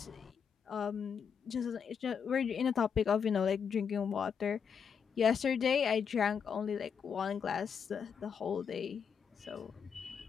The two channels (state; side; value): quieter; right; 6.9 dB